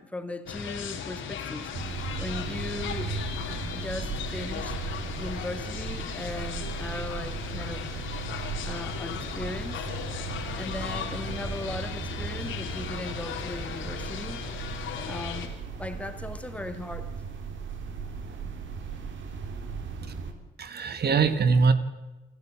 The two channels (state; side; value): normal; both; correlation 0.56